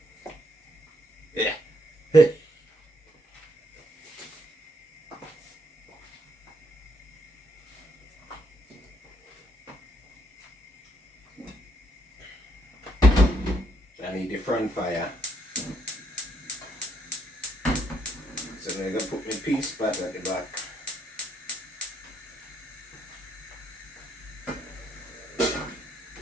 Yeah. I need the front fire. So I'm gonna put my pea spot at the back.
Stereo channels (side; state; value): both; normal; correlation 0.73